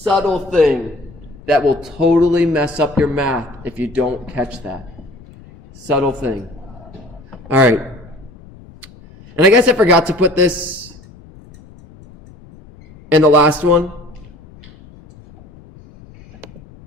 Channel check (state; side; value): noise; left; rumble, 22 dB below the sound